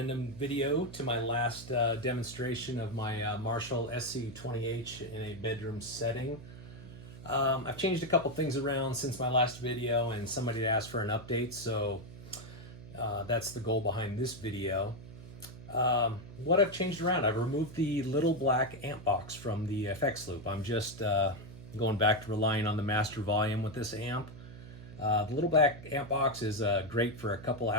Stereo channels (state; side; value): noise; right; hum, 15 dB below the sound